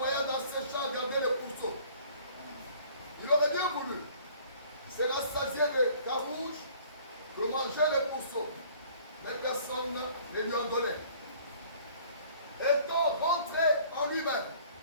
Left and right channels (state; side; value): inverted; both; correlation -0.54